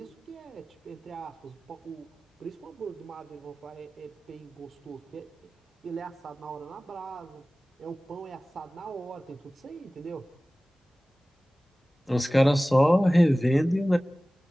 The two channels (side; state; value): both; normal; correlation 0.98